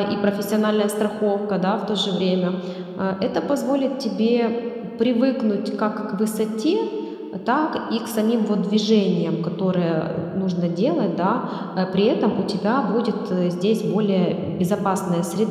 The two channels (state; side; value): identical; both; correlation 1.00